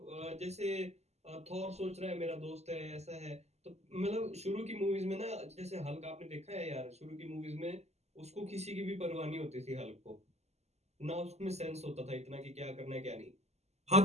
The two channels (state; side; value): late; left; 0.32 ms